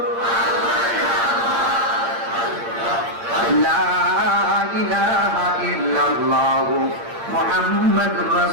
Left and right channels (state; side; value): late; left; 8.7 ms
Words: লা ইলাহা ইল্লাল্লাহ মুহাম্মাদুর